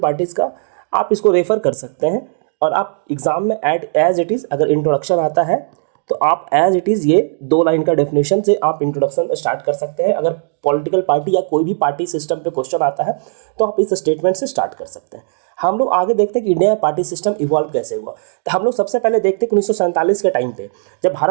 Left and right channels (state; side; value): silent; left; digital silence